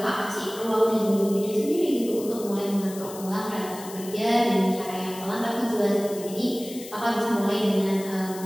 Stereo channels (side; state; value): left; noise; hiss, 15 dB below the sound